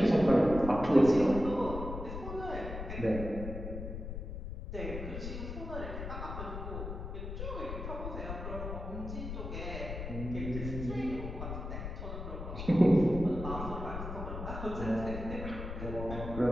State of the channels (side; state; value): left; noise; rumble, 7 dB below the sound